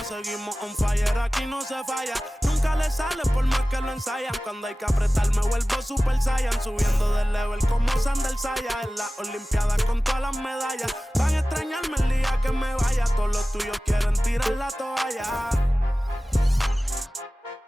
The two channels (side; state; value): both; normal; correlation 0.97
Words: Seguimos on fire, aquí no se falla. Nunca le sale por más que lo ensayan. Cuando hay que apretar me vuelvo super saiyan. Subiendo de level como Sandal Saya. En las olimpiadas con todas las medallas. Van a extrañarme el día que me vaya. Todos los tuyos quieren tirar la toalla.